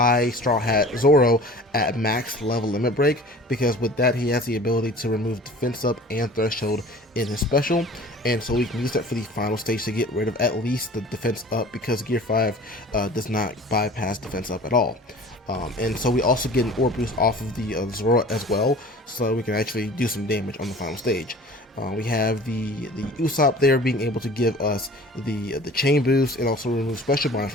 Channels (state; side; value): normal; both; correlation 0.44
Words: Straw Hat Zoro at max level limit break, because with that he has the ability to remove defense up and threshold in his special, and so we can use that for the final stage to get rid of at least the defense up, because Gear 5 does not bypass defense up at all. And so we also get an orb boost off of the Zoro as well, so we can actually do some damage on the final stage. We have the Usopp there being able to give us the chain boost and also remove special bind